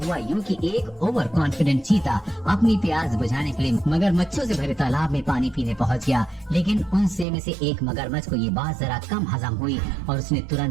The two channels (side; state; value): left; drops out; at 7.2 s